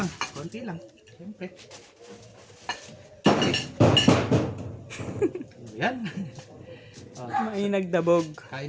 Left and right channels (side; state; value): both; identical; correlation 1.00